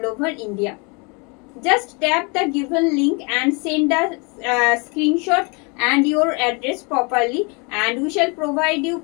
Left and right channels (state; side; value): quieter; right; 31.6 dB